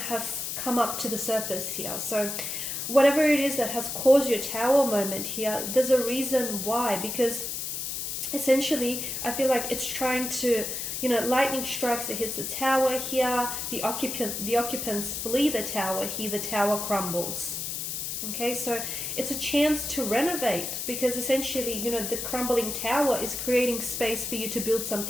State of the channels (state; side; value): noise; left; hiss, 4 dB below the sound